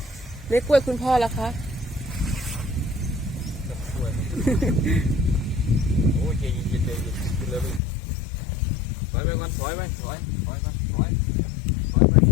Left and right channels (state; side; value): drops out; right; at 7.8 s